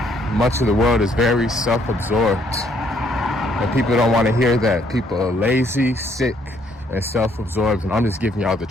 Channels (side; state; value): both; normal; correlation 0.68